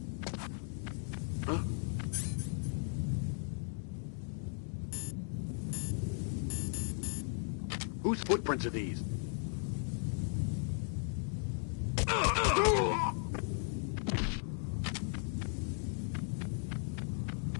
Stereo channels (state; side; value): silent; right; 53 dB below the other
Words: Whose footprints are these?